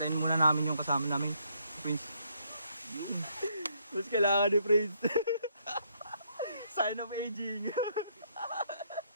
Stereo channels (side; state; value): both; inverted; correlation -0.72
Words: muna namin yung kasama namin. Prince. Mas kailangan ni Prince. Sign of aging.